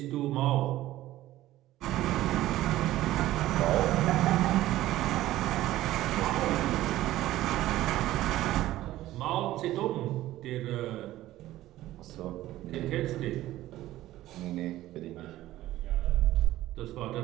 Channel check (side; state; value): left; quieter; 15.2 dB